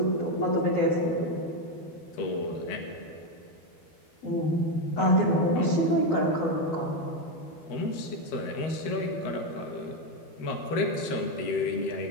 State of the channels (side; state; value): right; late; 12 ms